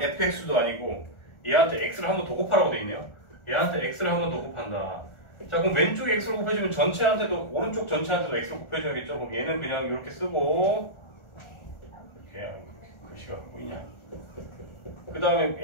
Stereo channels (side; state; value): right; late; 1.4 ms